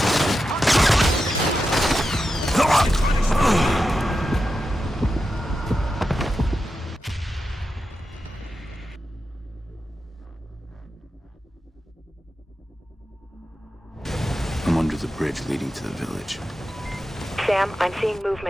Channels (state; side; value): normal; both; correlation 0.89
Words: leading to the village. Sam, I'm seeing